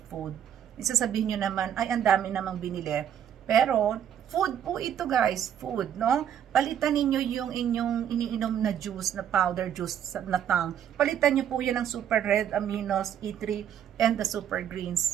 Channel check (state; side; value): quieter; left; 9.5 dB